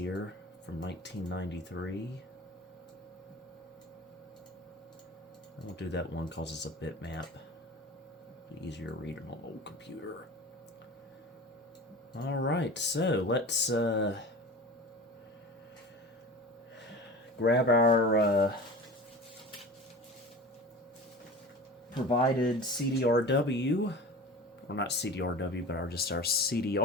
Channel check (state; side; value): normal; both; correlation 0.35